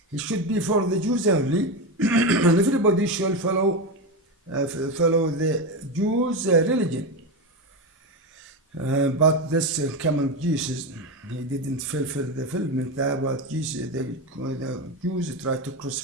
he should be for the Jews only, and everybody should follow the Jews' religion. But this coming Jesus, he didn't fulfill the fulfillment that what Jesus, the Jews tried to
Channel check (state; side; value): normal; both; correlation 0.16